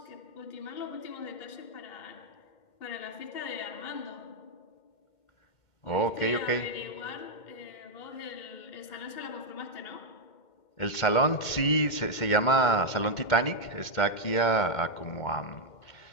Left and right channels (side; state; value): right; late; 2.1 ms